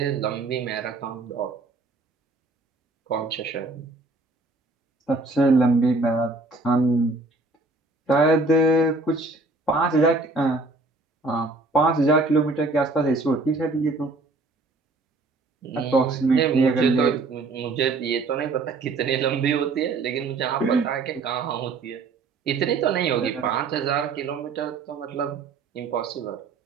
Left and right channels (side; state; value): left; quieter; 3.5 dB